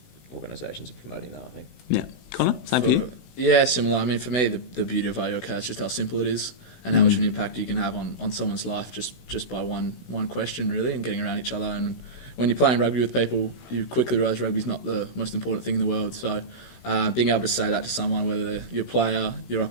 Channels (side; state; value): right; late; 16 ms